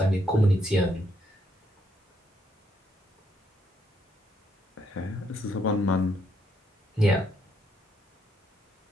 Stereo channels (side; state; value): both; normal; correlation 0.74